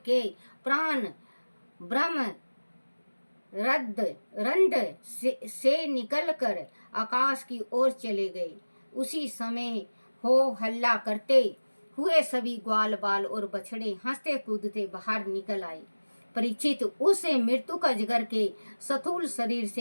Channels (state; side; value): inverted; both; correlation -1.00